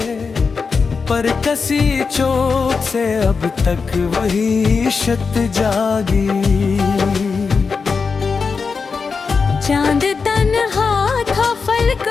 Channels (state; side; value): quieter; right; 5.0 dB